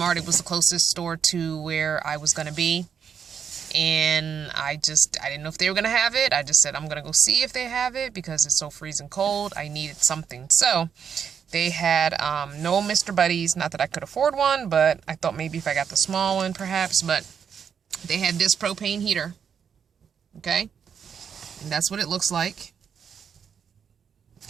It was the closest store to where I was going to be. And I didn't know if they were going to have it. I just said, I'm going to go see if they have it because it's so freezing cold. I needed something. So they had no Mr. Buddies. Not that I could afford one, but I thought maybe if I got the small one, perhaps. But they had this propane heater. Okay? And that's what it looks like.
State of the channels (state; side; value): quieter; left; 7.4 dB